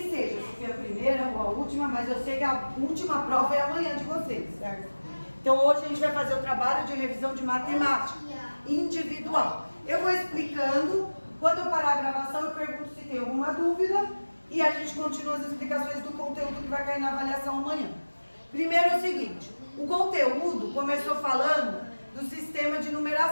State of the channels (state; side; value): inverted; both; correlation -1.00